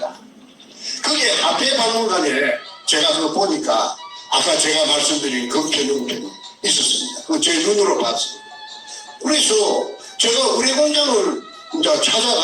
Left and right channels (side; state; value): both; identical; correlation 1.00